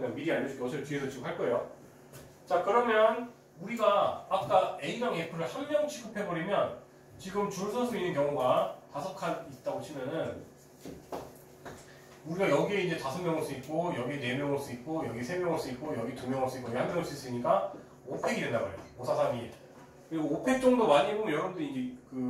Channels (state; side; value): identical; both; correlation 1.00